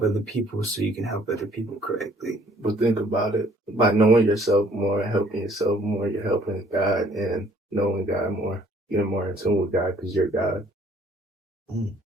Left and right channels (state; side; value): normal; both; correlation 0.60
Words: other people so you can help other people correctly. But think about it. By knowing yourself more and helping yourself more, you're helping God and knowing God more. Getting more in tune with God because you're God.